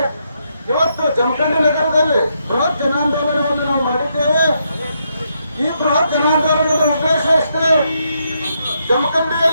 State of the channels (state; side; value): inverted; both; correlation -0.78